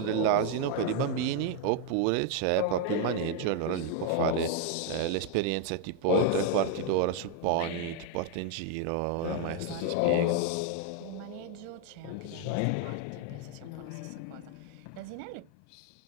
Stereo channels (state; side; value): different; both; correlation 0.00